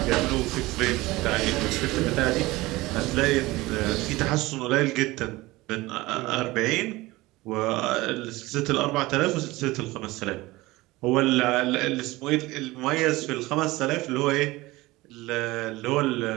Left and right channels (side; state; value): left; quieter; 20.0 dB